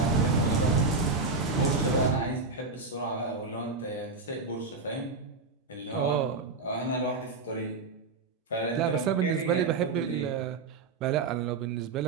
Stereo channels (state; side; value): quieter; left; 4.1 dB